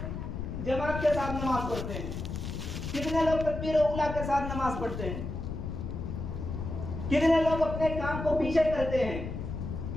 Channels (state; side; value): noise; left; rumble, 5 dB below the sound